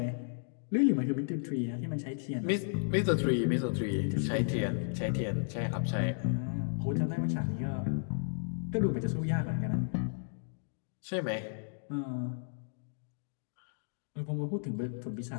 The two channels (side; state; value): right; silent; digital silence